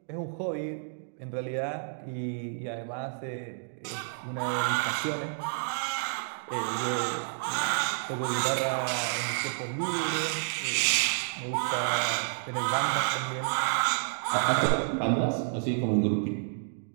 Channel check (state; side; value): silent; left; digital silence